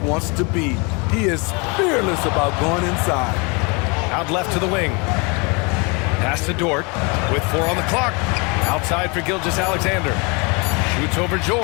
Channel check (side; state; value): right; quieter; 30.2 dB